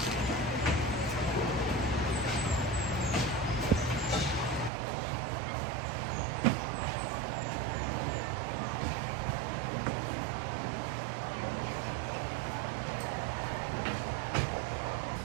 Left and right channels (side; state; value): left; drops out; at 4.7 s